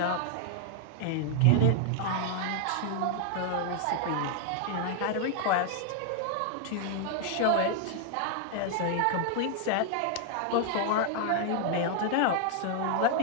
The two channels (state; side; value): different; both; correlation 0.00